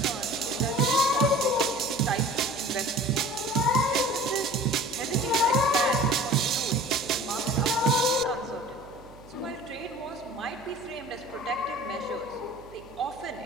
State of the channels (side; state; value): right; noise; hum, 22 dB below the sound